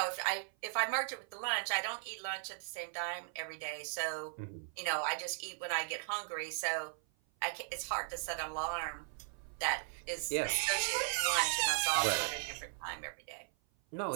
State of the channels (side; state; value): left; silent; 53 dB below the other